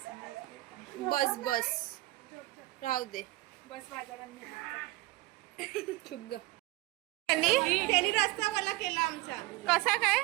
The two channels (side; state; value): left; quieter; 19.4 dB